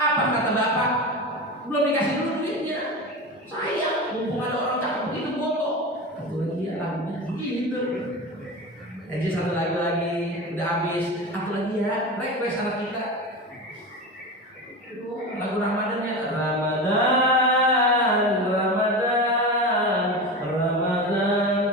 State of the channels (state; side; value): normal; both; correlation 0.26